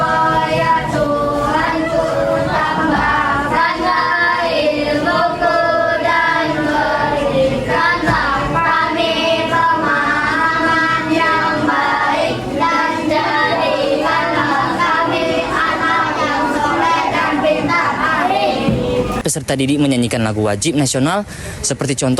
Peserta didik menyanyikan lagu wajib nasional seperti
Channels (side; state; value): both; identical; correlation 1.00